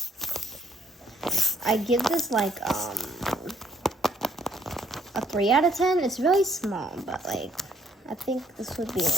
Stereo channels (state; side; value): normal; both; correlation 0.68